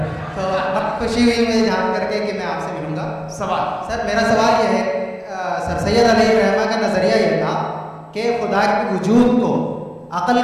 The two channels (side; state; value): both; identical; correlation 1.00